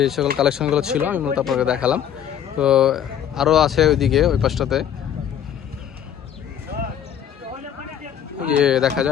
সকল কালেকশনগুলো ছিল আমি মূলত আপনাকে দেখালাম। তো আরও আছে ওইদিকে, ওই পাশটাতে দেখা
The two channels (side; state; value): right; quieter; 9.5 dB